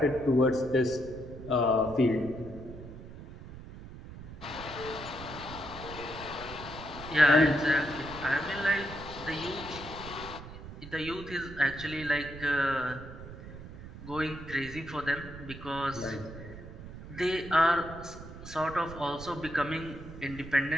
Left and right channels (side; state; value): right; noise; rumble, 13 dB below the sound